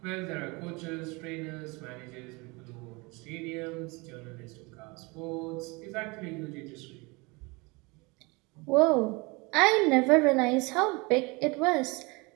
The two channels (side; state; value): left; quieter; 26.7 dB